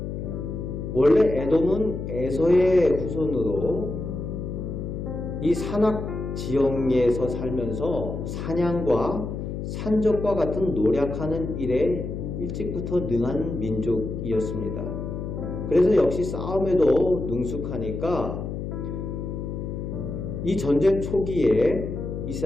원래 에돔은 에서의 후손으로 이 산악 지형에서 살면서 사냥과 산적과 같은 노력하는 일에 일찍부터 능한 민족이었습니다. 그래서 역시 싸움에도 능숙하니까 이 전쟁 초기에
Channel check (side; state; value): left; noise; hum, 5 dB below the sound